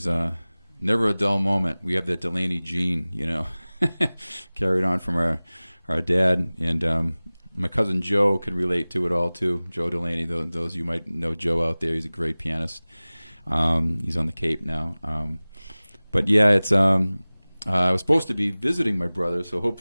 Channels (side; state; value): both; inverted; correlation -0.99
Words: never a dull moment. We have that Delaney gene, carried on from our dad, and my cousin Joe could relate to it all too. Joe Delaney, those you might know Joe out there. He's a great pianist. He's on the Cape now. But yeah, it's I was supposed to be visiting my brother, so